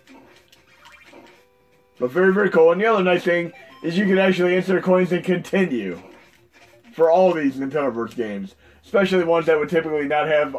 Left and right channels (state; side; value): identical; both; correlation 1.00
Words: But very, very cool. And the other nice thing is you can actually insert coins and continue for all these Nintendo Verse games. Especially ones that would typically not have